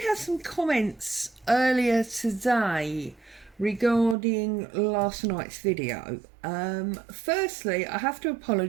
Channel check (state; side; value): drops out; left; at 4.2 s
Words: have some comments earlier today regarding last night's video. Firstly, I have to